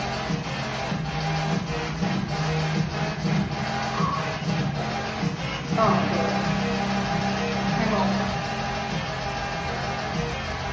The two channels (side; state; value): both; identical; correlation 1.00